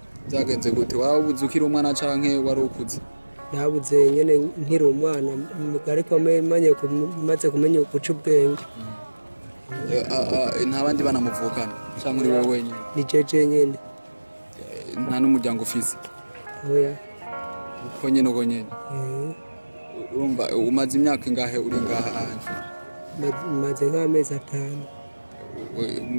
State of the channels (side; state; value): both; inverted; correlation -1.00